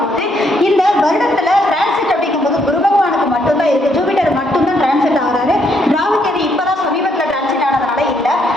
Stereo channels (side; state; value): both; normal; correlation 0.73